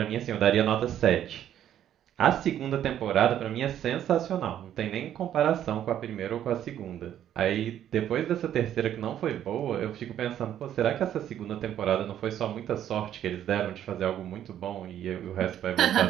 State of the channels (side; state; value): left; quieter; 10.8 dB